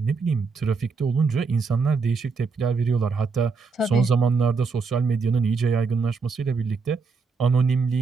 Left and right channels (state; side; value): quieter; left; 4.7 dB